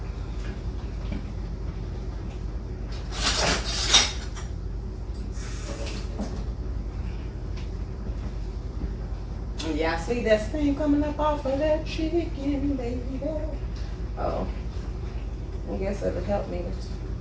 Y'all see that steam coming up off of that chicken, baby? Oh, I guess it'll help me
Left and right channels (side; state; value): both; identical; correlation 1.00